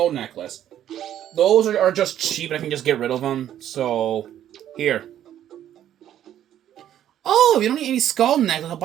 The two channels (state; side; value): quieter; left; 11.1 dB